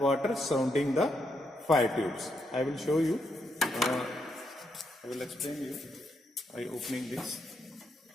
surrounding the fire tubes. I will show you. I will explain you by opening this.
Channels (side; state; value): both; normal; correlation 0.79